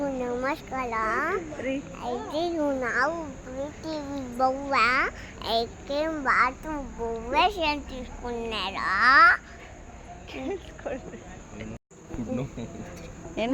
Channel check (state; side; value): identical; both; correlation 1.00